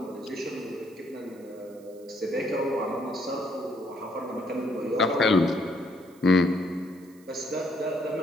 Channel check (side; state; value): right; noise; hiss, 27 dB below the sound